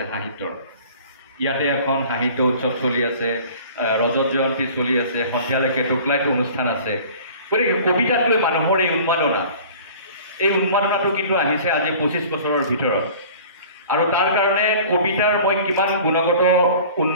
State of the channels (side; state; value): both; inverted; correlation -0.45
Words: সাহিত্যৰ। ইয়াতে এখন সাহিত্য উৎসৱ চলি আছে, ৰজত জয়ন্তী চলি আছে, সন্ধিয়ালৈকে টোকলাইটো অনুষ্ঠান আছে। গতিকে কবিতাক লৈ মানুহৰ এই উন্মাদনাটো কিন্তু আহিছে আজি 25 বছৰৰ ভিতৰত। আৰু তাৰ কাৰণে কবিতাৰ মই কিমান গুণগত